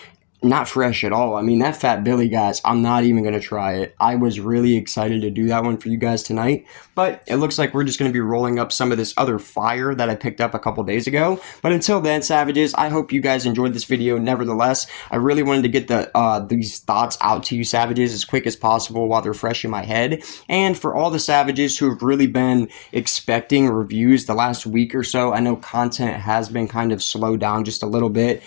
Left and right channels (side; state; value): right; silent; digital silence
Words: Not fresh at all. I mean, that Fat Billy, guys, I'm not even going to try it. I was really excited to do that one for you guys tonight, but it looks like we're just going to be rolling up some of this other fire that I picked up a couple days ago. But until then, savages, I hope you guys enjoyed this video. Nevertheless, I really wanted to get these thoughts out to you, savages, as quick as possible while they're fresh in my head. And for all the savages who have really been expecting reviews the last week or so, I know content has been kind of slowed down just a little bit,